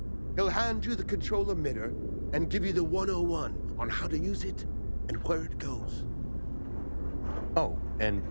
He'll hand you the control emitter and give you the 101 on how to use it and where it goes. Oh, and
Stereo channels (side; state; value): both; inverted; correlation -1.00